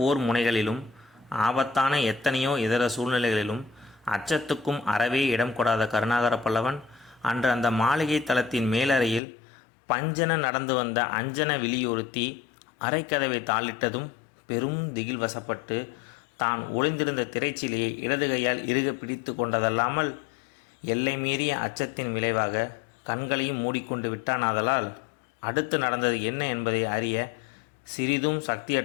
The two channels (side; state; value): right; drops out; at 9.2 s